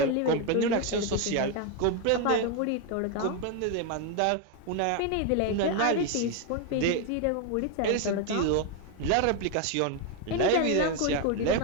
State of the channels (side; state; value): both; different; correlation 0.01